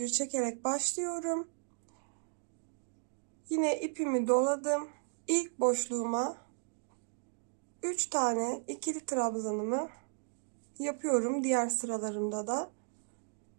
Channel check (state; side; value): silent; left; digital silence